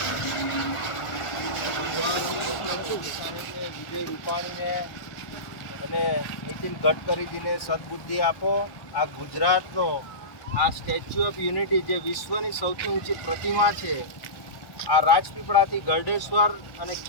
વિજય રૂપાણીને અને નીતિન ગડકરીજીને સદબુદ્ધિ આપો। આ ગુજરાતનો આ સ્ટેચ્યુ ઓફ યુનિટી જે વિશ્વની સૌથી ઊંચી પ્રતિમા છે, આ રાજપીપળાથી ગરડેશ્વર અને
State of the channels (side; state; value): right; late; 1.1 ms